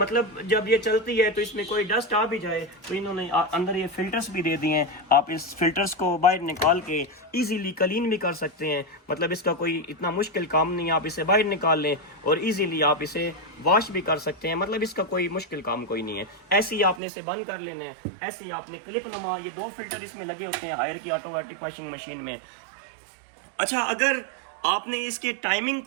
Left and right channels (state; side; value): drops out; left; at 17.0 s